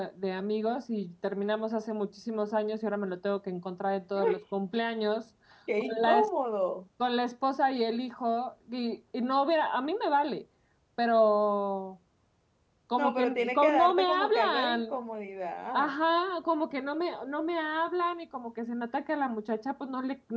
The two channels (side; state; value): both; identical; correlation 1.00